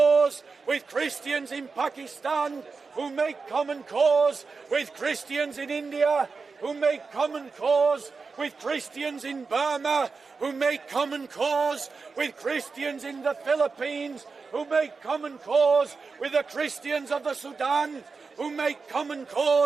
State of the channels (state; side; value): quieter; left; 4.6 dB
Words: with Christians in Pakistan, who make common cause with Christians in India, who make common cause with Christians in Burma, who make common cause with Christians in the Philippines, who make common cause with the Christians of the Sudan, who make common